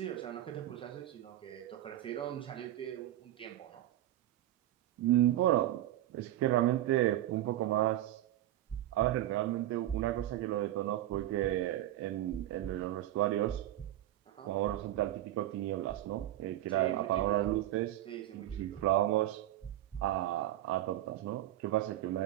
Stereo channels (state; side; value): quieter; left; 13.9 dB